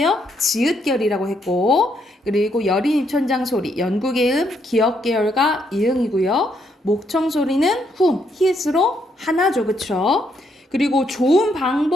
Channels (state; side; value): normal; both; correlation 0.75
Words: 지읒결이라고 했고, 그리고 여린 입천장 소리, 연구계음, 기역계열과 이응이고요. 목청 소리는 훔, 히읗으로 하나죠, 그쵸? 그리고 좋은